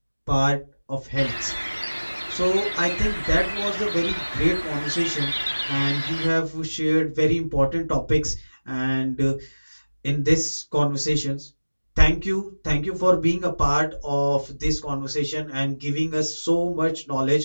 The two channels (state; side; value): inverted; both; correlation -1.00